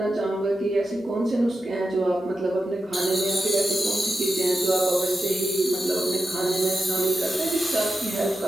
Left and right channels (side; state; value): both; normal; correlation 0.90